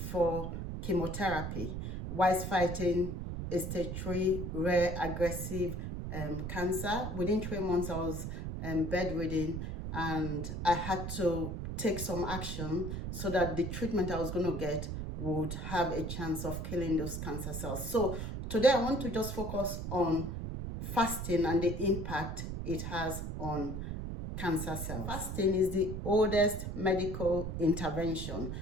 chemotherapy whilst fighting a stage 3 rare aggressive cancer. Within 3 months, I was bedridden and I had to take some action so that the treatment I was going to get would have a chance of killing those cancer cells. So today I want to just focus on fasting and the impact it has on cancer cells. Fasting is the oldest medical intervention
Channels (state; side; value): noise; right; rumble, 5 dB below the sound